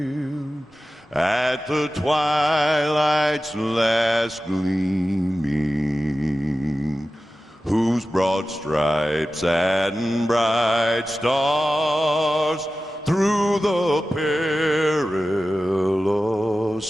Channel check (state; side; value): normal; both; correlation 0.94